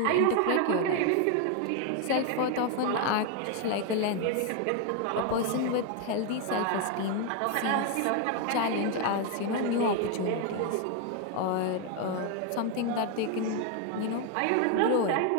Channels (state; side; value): different; both; correlation 0.01